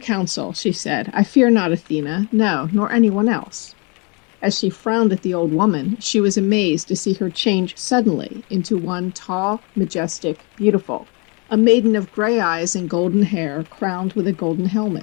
she said. I fear not Athena, no, nor anyone else. As she frowned at the old woman, she was amazed to see her change suddenly into one tall, majestic, beautiful, a maiden of gray eyes and golden hair, crowned with a golden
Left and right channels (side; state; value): right; quieter; 32.1 dB